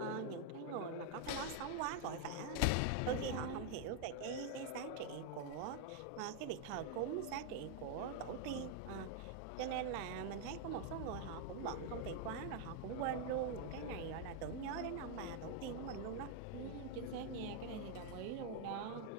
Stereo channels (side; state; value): both; different; correlation 0.00